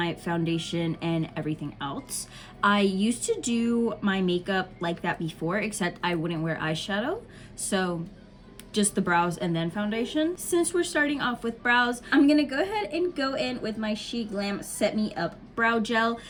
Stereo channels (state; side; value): identical; both; correlation 1.00